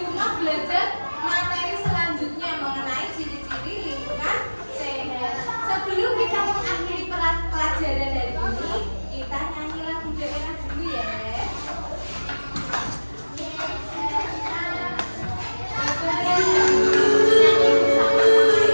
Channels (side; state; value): both; inverted; correlation -1.00